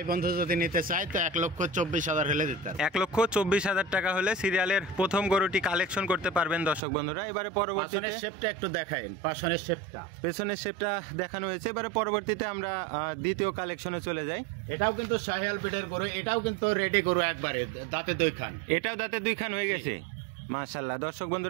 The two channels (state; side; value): drops out; left; at 6.8 s